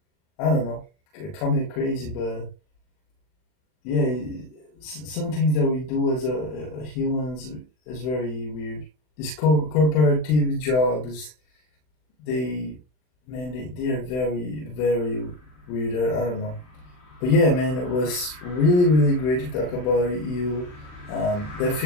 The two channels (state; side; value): late; right; 39 ms